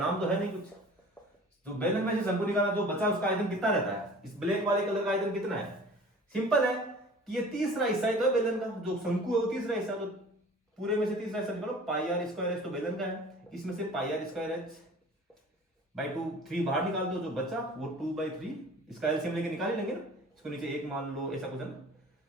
तो है नहीं कुछ। तो बेलन में से शंकु निकाला, जो बचा उसका आयतन कितना रहता है, इस ब्लैक वाले कलर का आयतन कितना है। सिंपल है कि ये तीसरा हिस्सा है तो बेलन का, जो शंकु है वो तीसरा हिस्सा, तो पूरे में से तीसरा हिस्सा निकालो, पाई आर स्क्वायर एच तो बेलन का है, इसमें से पाई आर स्क्वायर एच बाई 2, 3 बाहर निकाल दो, जो बचा वो 2/3, इसका एलसीएम लेके निकाल लेंगे ना, इसको नीचे 1 मान लो, ऐसा कुछ है ना।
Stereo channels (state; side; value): normal; both; correlation 0.45